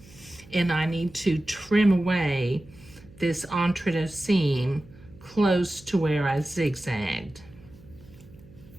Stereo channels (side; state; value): right; noise; hum, 23 dB below the sound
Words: and I need to trim away this entrecôte seam close to where I zigzagged.